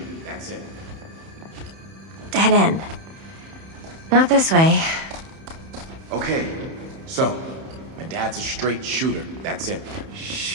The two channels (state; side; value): late; left; 31 ms